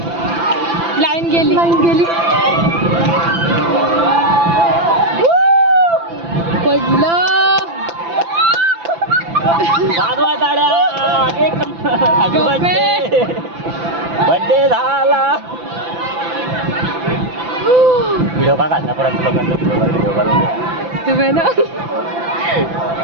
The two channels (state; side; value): late; left; 5.9 ms